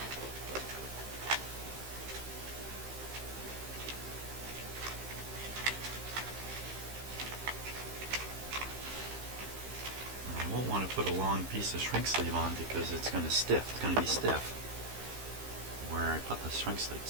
I won't want to put a long piece of shrink sleeve on because it's going to stiff. It's going to be stiff where I put the shrink sleeve,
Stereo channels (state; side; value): late; left; 15 ms